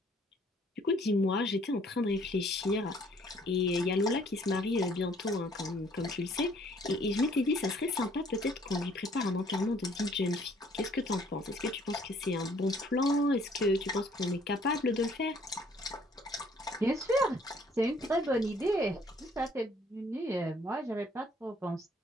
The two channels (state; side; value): normal; both; correlation 0.61